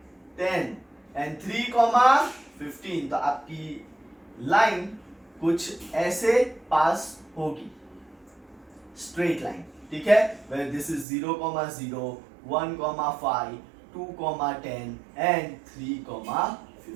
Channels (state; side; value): drops out; left; at 11.1 s